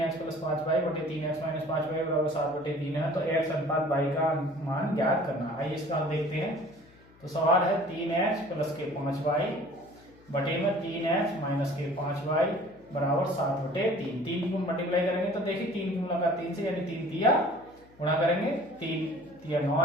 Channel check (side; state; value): left; noise; hum, 27 dB below the sound